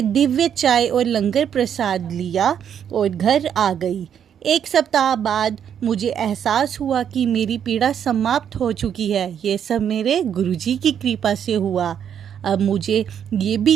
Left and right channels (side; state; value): left; quieter; 8.7 dB